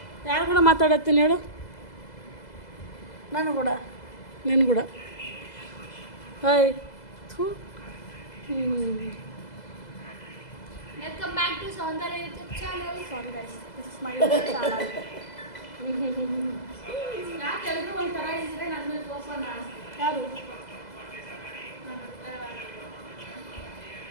ಯಾರು ಕೂಡ ಮಾತಾಡತ್ತೀನಿ ಹೇಳು? ನಾನು ಕೂಡ. ನೀನು ಕೂಡ. ಹಾಯ್. ಥೂ. Welcome back to Soundarya YouTube channel. Sorry guys, this is my YouTube channel. ಯಾಕೆ ಎಲ್ಲರೂ ಒಂಥರ ಇದ್ರೆ ನನ್ನ ಮೇಲೆ ಕೋಪ ಯಾರು?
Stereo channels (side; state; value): right; late; 2.0 ms